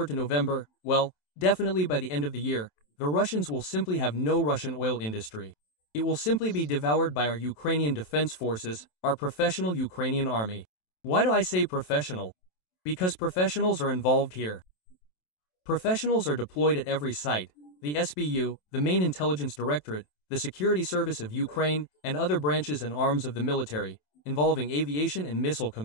to November, well, definitely by the end of the year, the Russians will simply have no Russian oil industry. It will simply be devoured by our Ukrainian defense forces, our professional Ukrainian army. Why do I say professional? Because professionals are involved here. Professionals are deployed at every site, the SBU, the Main Intelligence Directorate, the Security Service of Ukraine, and other branches and arms of the military, involving aviation and missile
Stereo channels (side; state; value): right; late; 27 ms